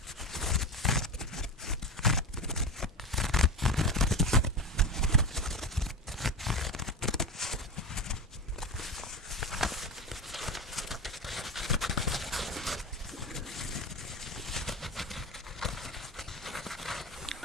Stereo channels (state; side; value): normal; both; correlation 0.23